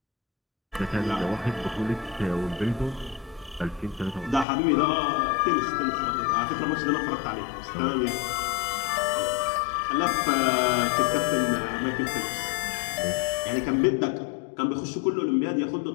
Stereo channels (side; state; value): right; drops out; at 4.5 s